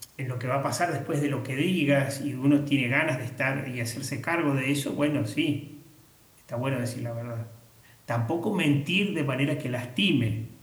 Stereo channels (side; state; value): both; identical; correlation 1.00